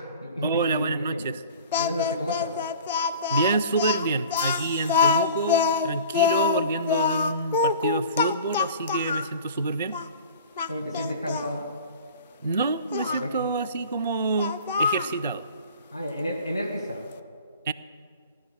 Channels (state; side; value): inverted; both; correlation -0.42